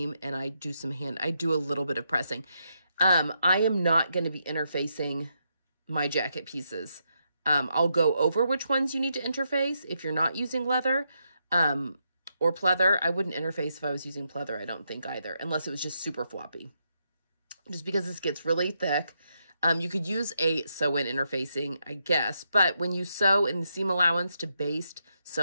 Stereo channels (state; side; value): inverted; both; correlation -0.80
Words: and I do a little bit of pressing. I am not going to be interfacing my jacket pieces. I'll go over which ones you need to interface if you're not using leather or pleather. I wouldn't interface if I was using pleather, I don't think either, unless it was just super floppy. Just because this gets really thick. You could use a sew-in interfacing, I guess, but when you sew in the seam allowance to baste